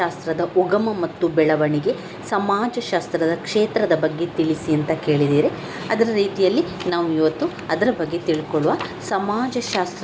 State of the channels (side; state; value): both; identical; correlation 1.00